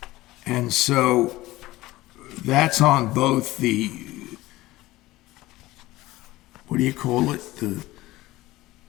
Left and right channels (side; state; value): right; quieter; 18.1 dB